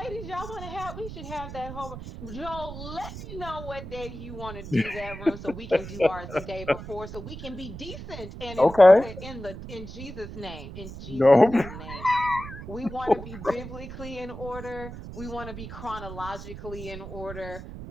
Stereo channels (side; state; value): right; noise; rumble, 11 dB below the sound